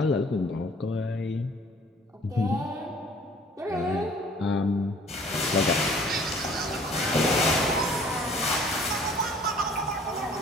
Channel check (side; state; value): both; normal; correlation 0.53